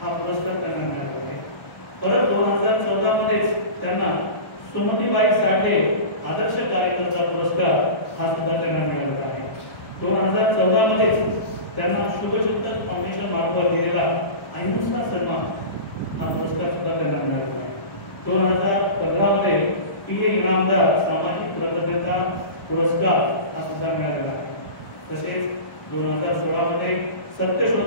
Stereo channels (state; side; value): late; right; 1.1 ms